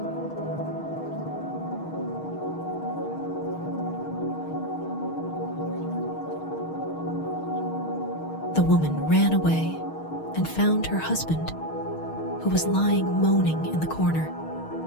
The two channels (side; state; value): right; late; 6.4 ms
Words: The woman ran away and found her husband, who was lying moaning in the corner